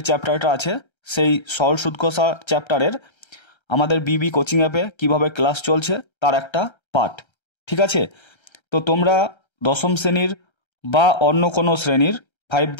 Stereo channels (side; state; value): right; late; 1.3 ms